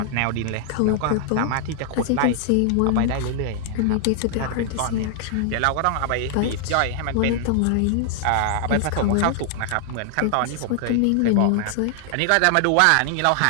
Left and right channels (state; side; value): different; both; correlation 0.00